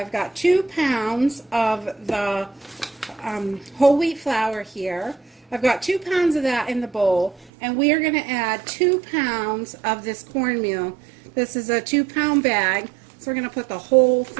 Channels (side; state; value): left; drops out; at 7.5 s